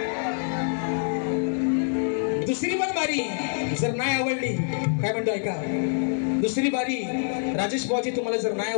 दुसरी पण बारी जर नाही आवडली, काय म्हणतो ऐका, दुसरी बारी राजेश बुवाची तुम्हाला जर नाही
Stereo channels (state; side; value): silent; right; digital silence